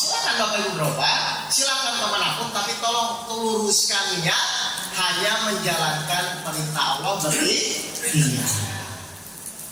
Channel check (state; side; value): identical; both; correlation 1.00